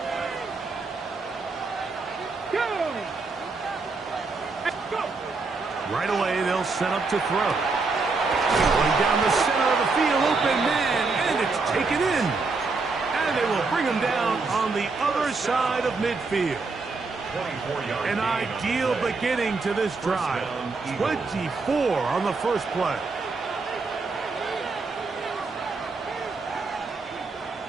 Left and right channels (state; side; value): quieter; left; 4.0 dB